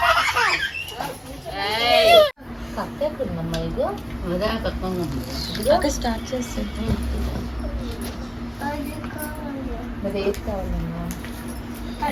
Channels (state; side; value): identical; both; correlation 1.00